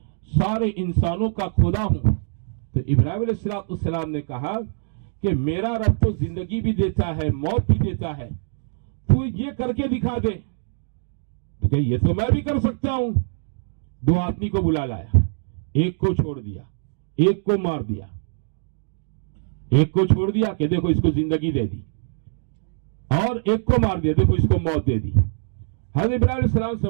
سارے انسانوں کا خدا ہوں، تو ابراہیم علیہ السلام نے کہا کہ میرا رب تو زندگی بھی دیتا ہے، موت بھی دیتا ہے، تو یہ کر کے دکھا دے۔ تو کہ یہ تو میں بھی کر سکتا ہوں۔ 2 آدمی کو بلا لایا، ایک کو چھوڑ دیا، ایک کو مار دیا، ایک کو چھوڑ دیا کہ دیکھو اس کو زندگی دے دی، اور ایک کو مار دیا دیکھو اس کو موت دے دی۔ حضرت ابراہیم علیہ السلام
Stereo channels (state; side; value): silent; left; digital silence